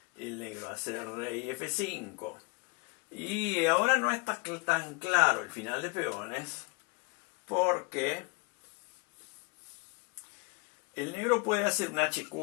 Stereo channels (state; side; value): quieter; right; 31.2 dB